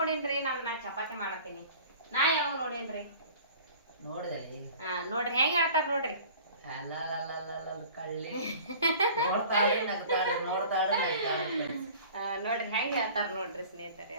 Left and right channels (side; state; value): both; inverted; correlation -0.44